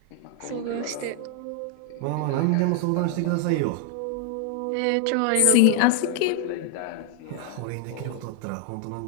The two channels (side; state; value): both; different; correlation 0.01